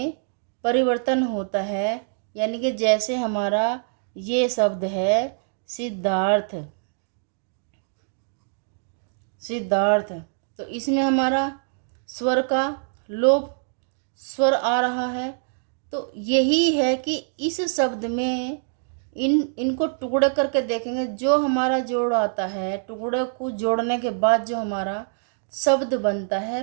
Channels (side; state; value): left; silent; digital silence